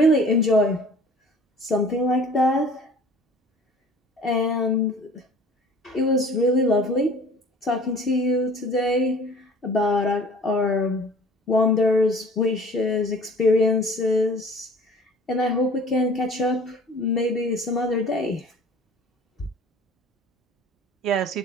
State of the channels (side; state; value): both; normal; correlation 0.47